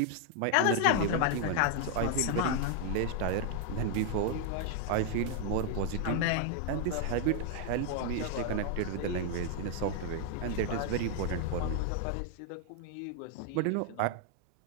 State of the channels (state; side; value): different; both; correlation 0.00